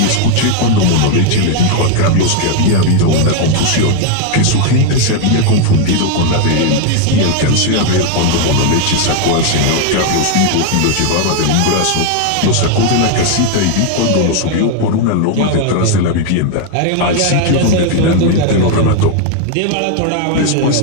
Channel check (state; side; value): different; both; correlation 0.01